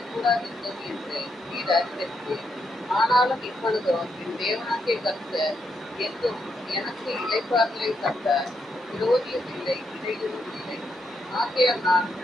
கூடாதிருந்தது என்று நீர் அறிந்திருக்கிறேன். ஆனாலும் இப்பொழுதோ என் தேவனாகிய கர்த்தர் என்றும் எனக்கு இளைப்பாறுதலை தந்தார். விரோதியும் இல்லை, இடையூறும் இல்லை. ஆகையால் நான்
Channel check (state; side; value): normal; both; correlation 0.80